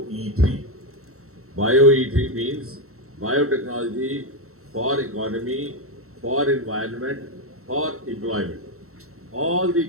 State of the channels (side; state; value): left; late; 0.63 ms